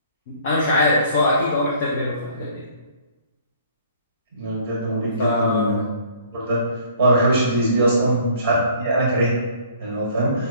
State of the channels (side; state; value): both; inverted; correlation -0.56